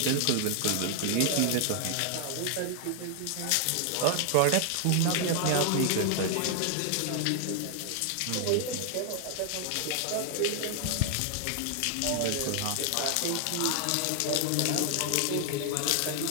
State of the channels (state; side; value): different; both; correlation 0.00